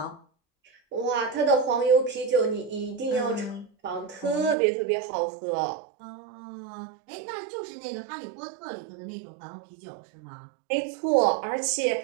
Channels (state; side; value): drops out; left; at 4.5 s